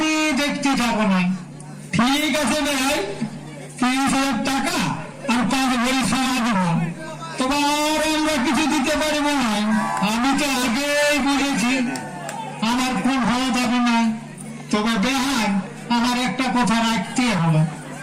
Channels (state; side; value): identical; both; correlation 1.00